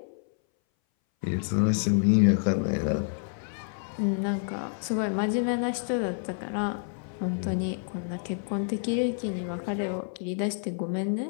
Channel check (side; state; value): right; silent; 59 dB below the other